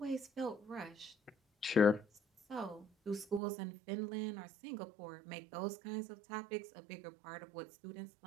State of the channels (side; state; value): left; drops out; at 3.4 s